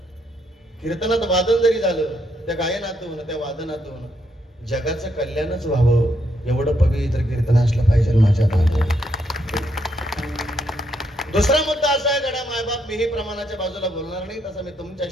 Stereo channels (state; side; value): normal; both; correlation 0.76